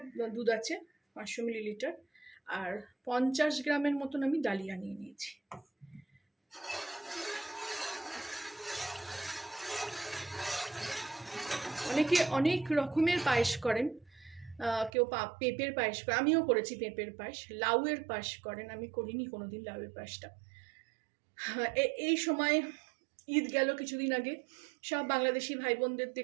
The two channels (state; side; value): drops out; left; at 14.9 s